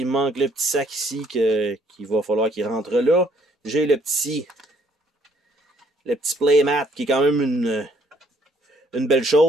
me manque le petit sac ici qu'il va falloir qu'il rentre là. J'ai le petit playmat qui est quand même une belle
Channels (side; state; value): both; normal; correlation 0.65